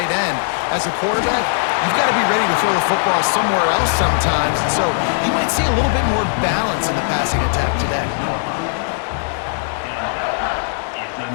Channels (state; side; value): silent; right; digital silence